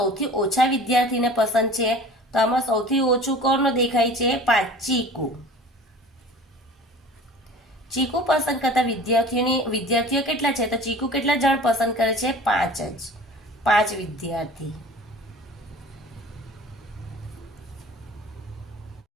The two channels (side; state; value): both; normal; correlation 0.42